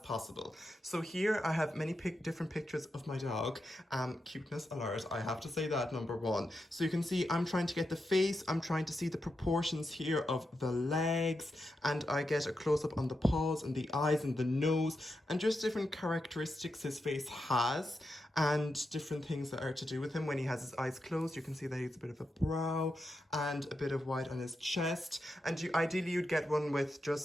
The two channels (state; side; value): normal; both; correlation 0.87